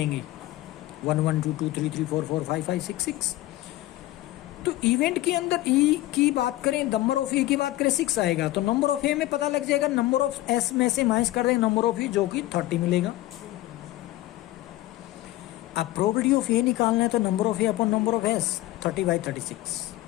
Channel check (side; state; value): right; quieter; 16.6 dB